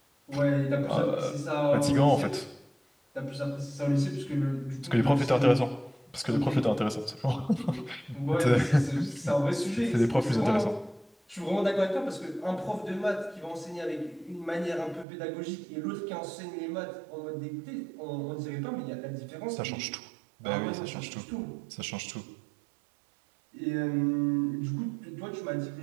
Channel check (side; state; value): left; drops out; at 15.1 s